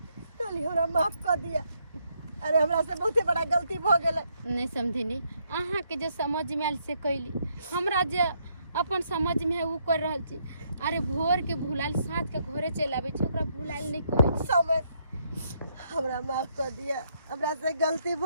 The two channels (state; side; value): inverted; both; correlation -0.74